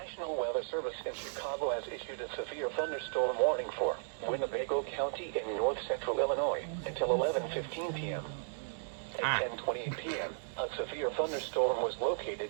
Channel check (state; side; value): silent; left; 54 dB below the other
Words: Weather Service in Chicago has issued a severe thunderstorm warning for Winnebago County in north-central Illinois until 11:15 p.m. At 10:28 p.m., a severe thunderstorm was